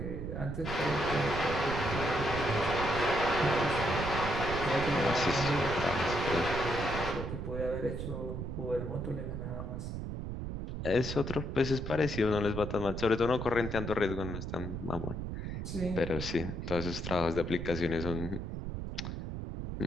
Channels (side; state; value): right; noise; rumble, 5 dB below the sound